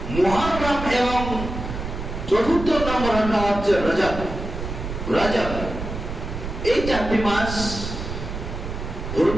মুহররম এবং 4র্থ নম্বরটা হচ্ছে রজব। রজব, এই 4টি মাস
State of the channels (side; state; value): right; noise; rumble, 6 dB below the sound